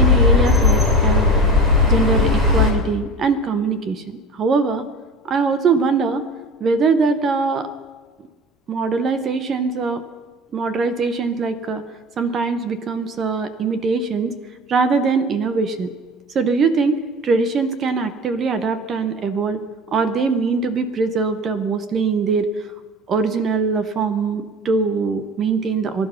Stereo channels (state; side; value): normal; both; correlation 0.36